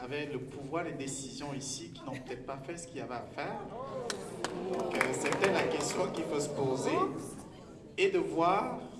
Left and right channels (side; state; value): both; identical; correlation 1.00